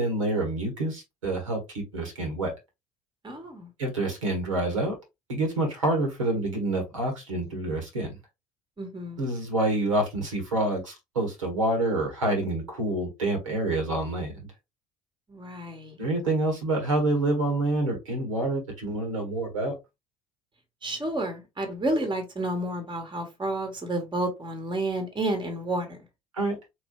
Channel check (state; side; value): normal; both; correlation 0.37